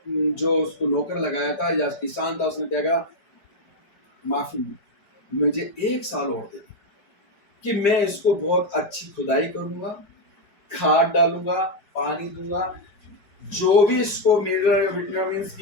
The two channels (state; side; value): late; right; 5.0 ms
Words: जो उसको नौकर लगाया था या किसान था, उसने क्या कहा, माफी, मुझे 1 साल और दे कि मैं इसको बहुत अच्छी खुदाई करूंगा, खाद डालूंगा, पानी दूंगा, जो भी इसको विटामिन्स